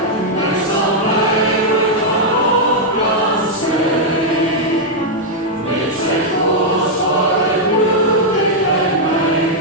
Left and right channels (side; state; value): both; normal; correlation -0.03